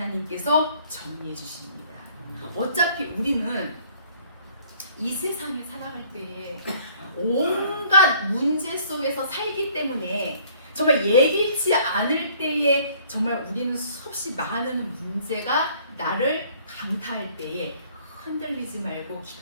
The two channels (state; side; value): inverted; both; correlation -0.58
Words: 정리해 주십니다. 어차피 우리는 이 세상에 살아갈 때에 온갖 문제 속에서 살기 때문에 정말 예기치 않을 때에 정말 우리는 수없이 많은 문제가 나를 강타할 때에 흔들리지 말고